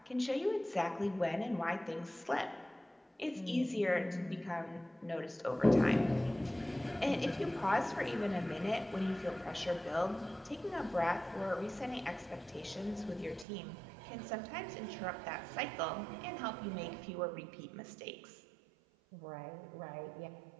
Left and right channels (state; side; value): drops out; left; at 13.5 s